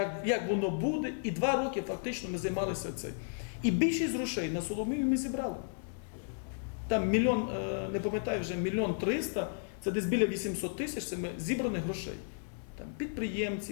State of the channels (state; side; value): silent; right; 55 dB below the other